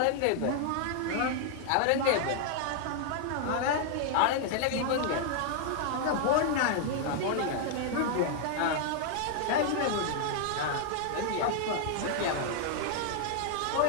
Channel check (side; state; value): both; different; correlation 0.00